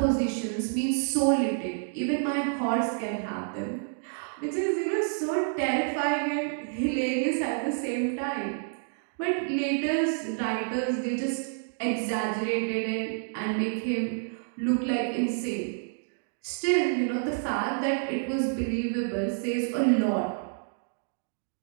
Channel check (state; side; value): silent; left; digital silence